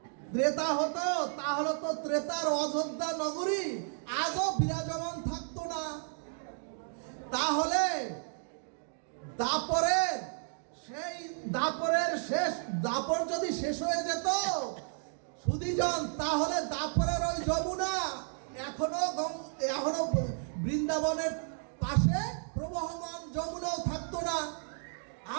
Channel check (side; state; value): left; silent; 56 dB below the other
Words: ত্রেতা হতো, তাহলে তো ত্রেতার অযোধ্যা নগরী আজও বিরাজমান থাকতো না। তাহলে দাপর যদি শেষ হয়ে যেত সুধীজন, তাহলে দাপরের ওই যমুনা এখনো বৃন্দাবনের পাশে প্রবহমান যমুনাও থাকতো না,